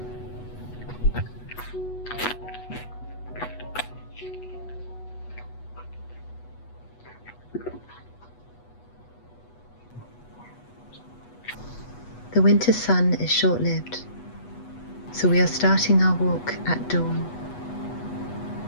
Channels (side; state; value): right; late; 8.2 ms